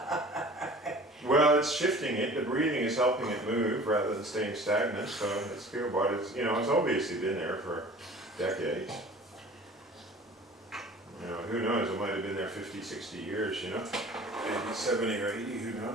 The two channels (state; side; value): normal; both; correlation 0.45